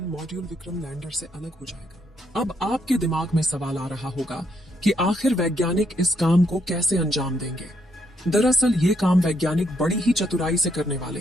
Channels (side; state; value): both; normal; correlation 0.74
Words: मॉड्यूल विक्रम लैंडर से अलग हो जाएगा। अब आपके दिमाग में सवाल आ रहा होगा कि आखिर वैज्ञानिक इस काम को कैसे अंजाम देंगे। दरअसल ये काम वैज्ञानिक बड़ी ही चतुराई से करने वाले